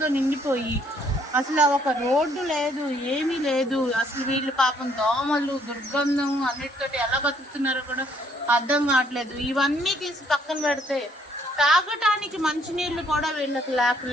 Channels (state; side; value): normal; both; correlation 0.66